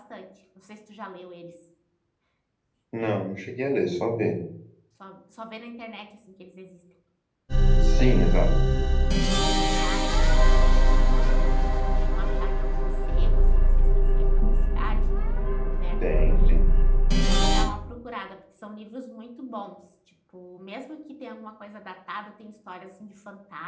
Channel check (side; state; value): both; identical; correlation 1.00